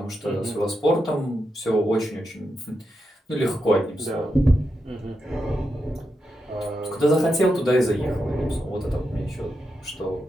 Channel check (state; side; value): normal; both; correlation 0.86